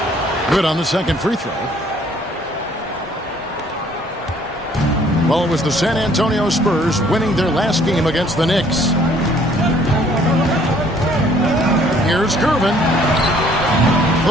Good on the second free throw. Well, it was the San Antonio Spurs winning their last game against the Knicks. Here's Gervin.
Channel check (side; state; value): both; normal; correlation 0.60